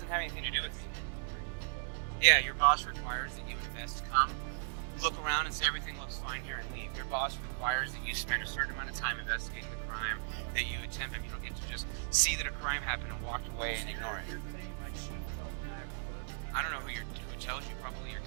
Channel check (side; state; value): left; silent; digital silence